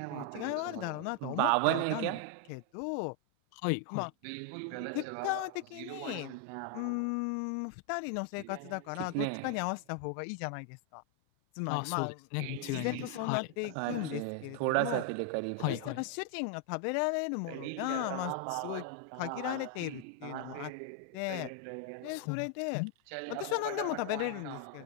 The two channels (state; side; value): different; both; correlation 0.00